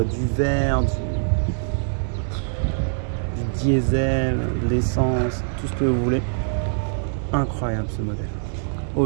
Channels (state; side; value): silent; left; digital silence